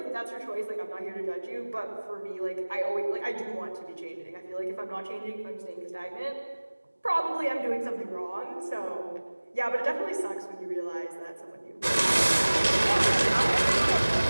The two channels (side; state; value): both; inverted; correlation -1.00